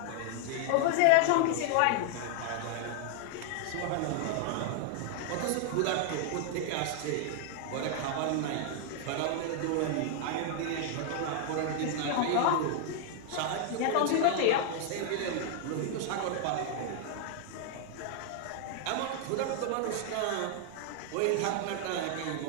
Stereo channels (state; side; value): different; both; correlation 0.00